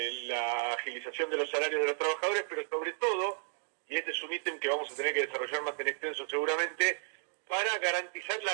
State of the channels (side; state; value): left; silent; 56 dB below the other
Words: agilización de los salarios de los trabajadores, pero sobre todo, y este es un ítem que vamos a tener que desarrollar más en extenso seguramente, para garantizar la